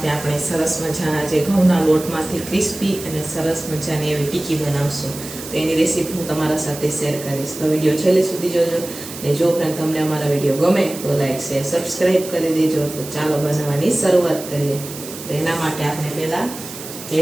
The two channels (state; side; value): noise; right; hiss, 12 dB below the sound